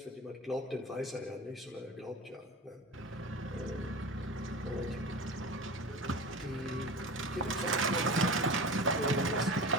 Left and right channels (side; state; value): both; normal; correlation 0.32